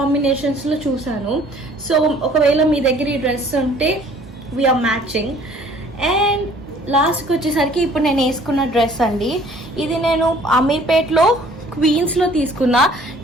చూసాను. సో ఒకవేళ మీ దగ్గర ఈ డ్రెస్ ఉంటే వీఆర్ మ్యాచింగ్. అండ్ లాస్ట్కి వచ్చేసరికి ఇప్పుడు నేను వేసుకున్న డ్రెస్ అండి. ఇది నేను అమీర్పేట్లో క్వీన్స్లో తీసుకున్నా.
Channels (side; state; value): both; normal; correlation 0.55